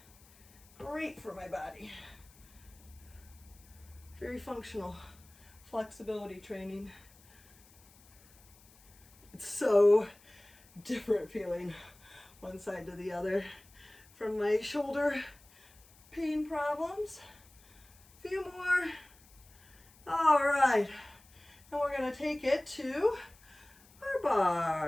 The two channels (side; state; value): left; noise; hiss, 26 dB below the sound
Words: Great for my body. Very functional flexibility training. It's so different feeling one side to the other from my shoulder pain problems. A few more. All right. And we're going to take it to our